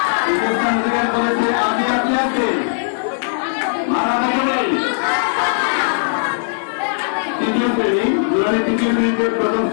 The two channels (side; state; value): right; silent; digital silence